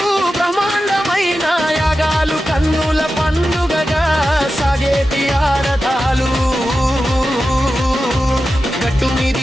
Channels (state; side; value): normal; both; correlation 0.92